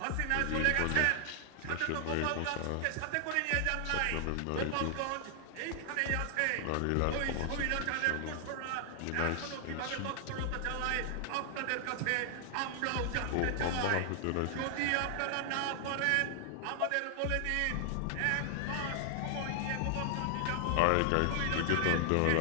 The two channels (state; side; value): different; both; correlation 0.00